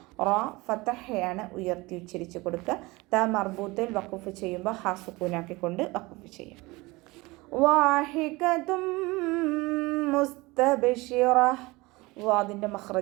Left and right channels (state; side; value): quieter; left; 22.5 dB